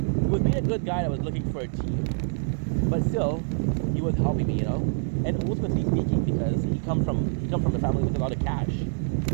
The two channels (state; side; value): silent; left; 61 dB below the other